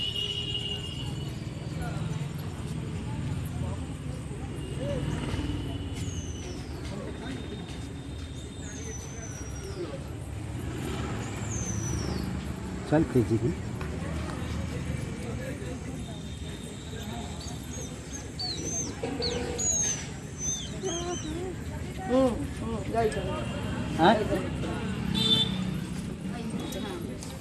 चल तेजी की हाँ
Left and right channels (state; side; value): identical; both; correlation 1.00